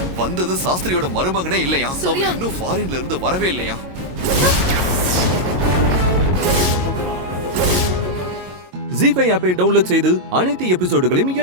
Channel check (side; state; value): left; late; 22 ms